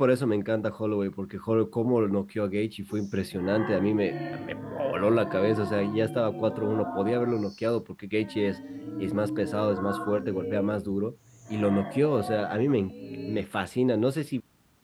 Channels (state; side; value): identical; both; correlation 1.00